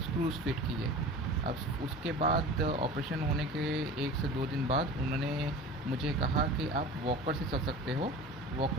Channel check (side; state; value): both; normal; correlation 0.37